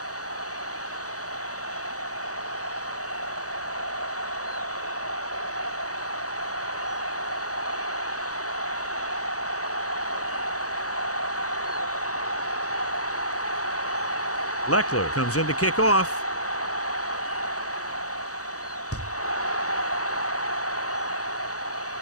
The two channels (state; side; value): late; right; 0.66 ms